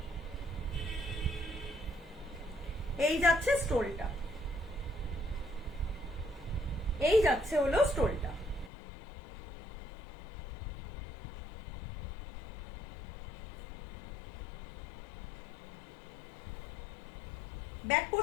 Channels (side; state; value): right; drops out; at 8.7 s